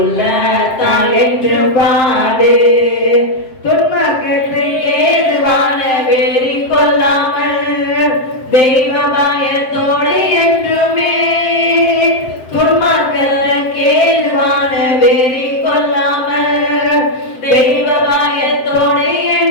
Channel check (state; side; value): late; right; 7.7 ms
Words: உள்ளத்தால் என்று பாடு. துன்பக்கத்தை ஏதுவான வெறி கொள்ளாமல் தெய்வ பயத்தோடு என்றுமே. துன்பக்கத்துக்கு ஏதுவான வெறி கொள்ளாமல் தெய்வ பயத்தோடு